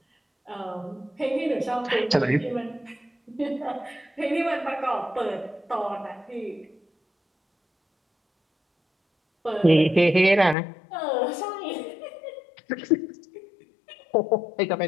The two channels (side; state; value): right; drops out; at 10.6 s